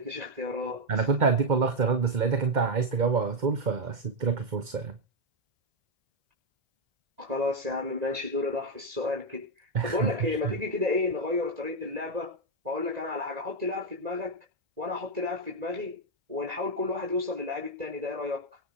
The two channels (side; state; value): left; late; 2.1 ms